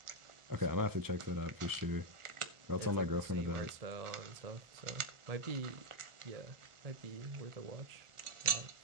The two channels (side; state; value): left; late; 1.4 ms